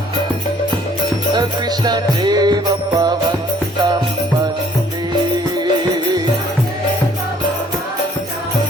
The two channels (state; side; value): normal; both; correlation 0.60